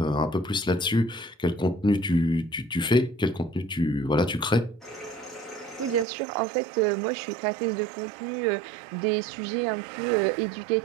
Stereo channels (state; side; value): drops out; left; at 6.1 s